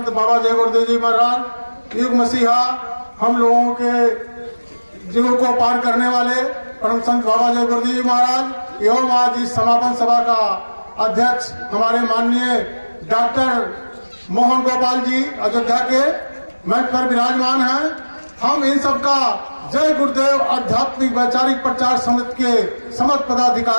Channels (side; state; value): both; inverted; correlation -1.00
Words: बाबा जय गुरुदेव जी महाराज, युग मसीहा, हम लोगों के जीवों को पार करने वाले परम संत बाबा जय गुरुदेव जी महाराज एवं आज इस समापन सभा का अध्यक्ष हमारे माननीय डॉक्टर मोहन गोपाल जी अयोध्या के मंच पर विराजमान हैं। हम इन सबका जय गुरुदेव आध्यात्मिक वैचारिक प्रचार समिति के समस्त